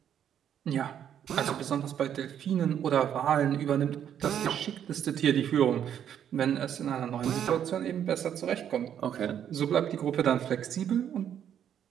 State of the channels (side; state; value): left; quieter; 9.4 dB